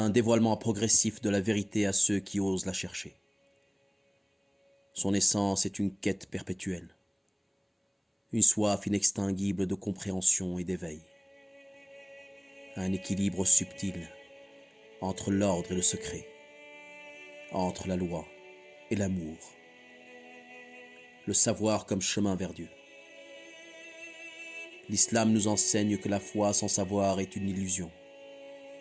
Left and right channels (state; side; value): identical; both; correlation 1.00